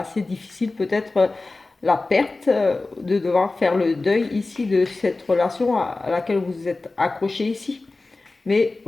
difficiles, peut-être la perte, de devoir faire le deuil ici de cette relation à laquelle vous êtes accroché ici. Mais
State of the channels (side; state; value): right; quieter; 3.4 dB